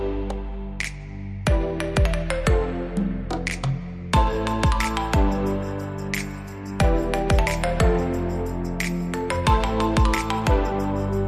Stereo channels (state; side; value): identical; both; correlation 1.00